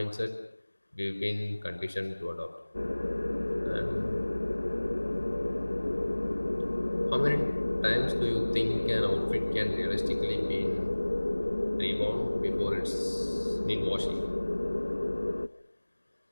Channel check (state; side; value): inverted; both; correlation -1.00